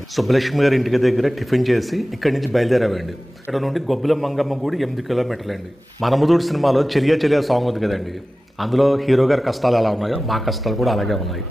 సుబ్బలక్ష్మి గారి ఇంటికి దగ్గర టిఫిన్ చేసి ఇక్కడి నుంచి బయలుదేరామండి. ఇక్కడ నుండి గొబ్బుల మంగమ్మ గుడి 8 కిలోమీటర్లండి. మనముదూడు సినిమాలో చెలియా చెలియా సాంగ్ ఉంది కదండి, అందులో హీరో గారి కష్టాలు ఎలా ఉన్నాయో మా కష్టాలు కూడా అలాగే ఉన్నాయి.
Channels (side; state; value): both; normal; correlation 0.96